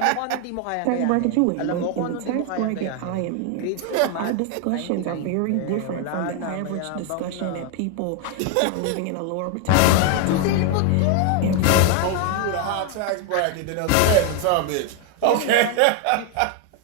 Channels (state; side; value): different; both; correlation 0.01